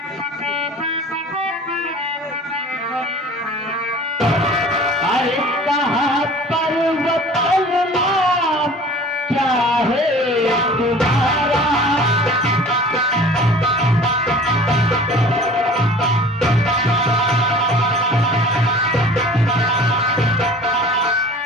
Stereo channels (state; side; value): normal; both; correlation 0.44